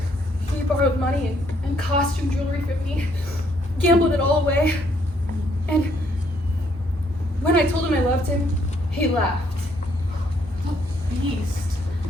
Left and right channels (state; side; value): normal; both; correlation 0.69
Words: borrowed money and costume jewelry from me, gambled it all away. And when I told him I loved him, he laughed. Beast.